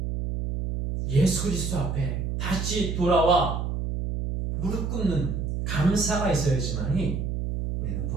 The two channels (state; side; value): noise; right; hum, 2 dB below the sound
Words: 예수 그리스도 앞에 다시 돌아와 무릎 꿇는 감사가 있어야지만이 우리는